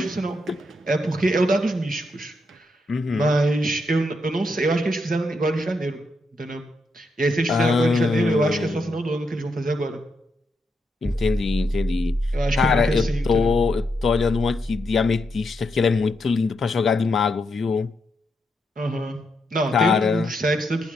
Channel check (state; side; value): normal; both; correlation 0.81